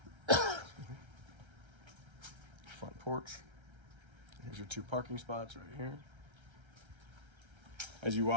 Front porch. Here's your 2 parking spots right here. As you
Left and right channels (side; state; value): left; late; 1.3 ms